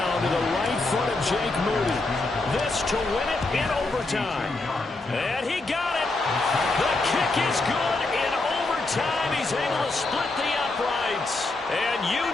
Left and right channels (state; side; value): quieter; right; 3.2 dB